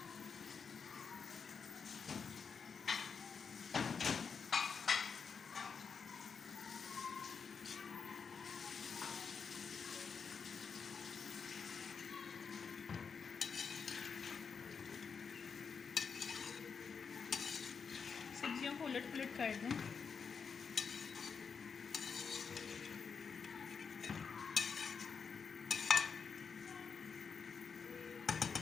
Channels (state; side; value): quieter; right; 5.9 dB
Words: सब्जियों को उलट पुलट कर दें।